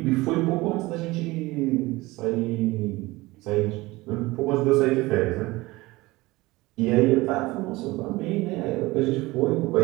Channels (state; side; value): quieter; left; 20.7 dB